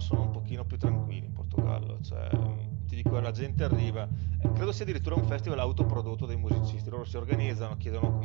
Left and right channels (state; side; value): quieter; left; 28.4 dB